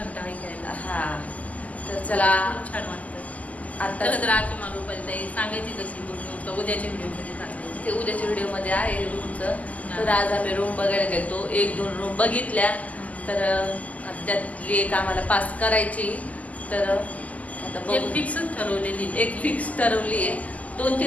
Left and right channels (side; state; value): right; late; 0.075 ms